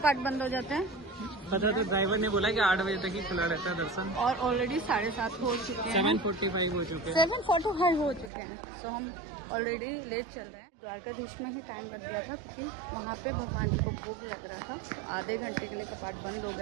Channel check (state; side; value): drops out; left; at 8.3 s